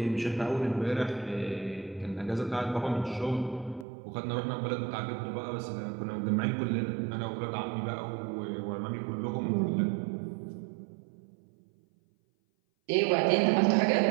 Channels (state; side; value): drops out; left; at 3.9 s